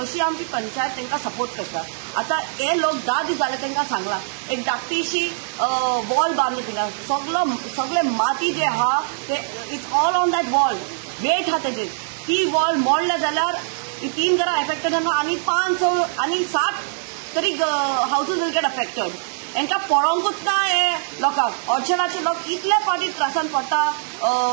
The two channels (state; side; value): silent; left; digital silence